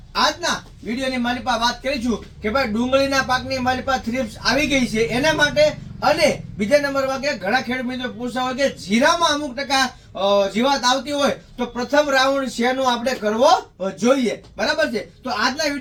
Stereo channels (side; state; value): both; identical; correlation 1.00